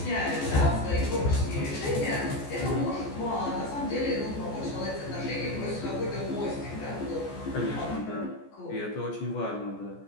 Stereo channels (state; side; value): late; right; 14 ms